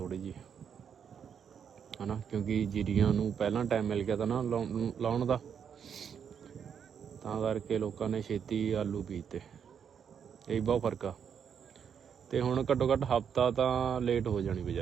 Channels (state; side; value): quieter; left; 7.6 dB